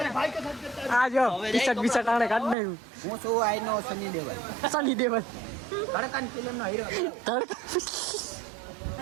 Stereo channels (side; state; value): left; drops out; at 2.6 s